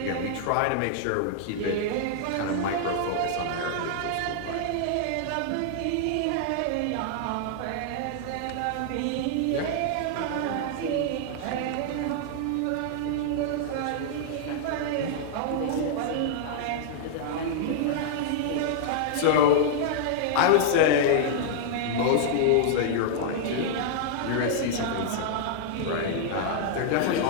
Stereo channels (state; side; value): different; both; correlation -0.01